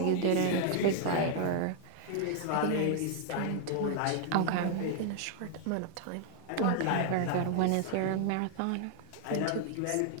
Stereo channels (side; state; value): both; different; correlation 0.00